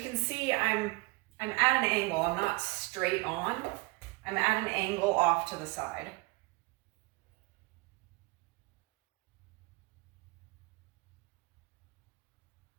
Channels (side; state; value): left; quieter; 25.0 dB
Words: can see, I'm at an angle. I'm not straight on. I'm at an angle off to the side.